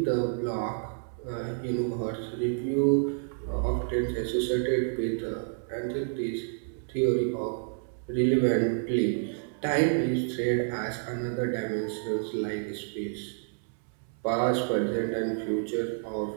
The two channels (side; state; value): left; silent; 58 dB below the other